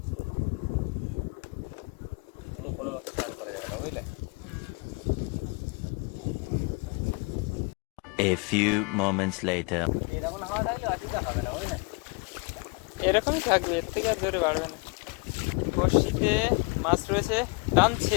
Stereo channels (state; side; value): quieter; right; 29.7 dB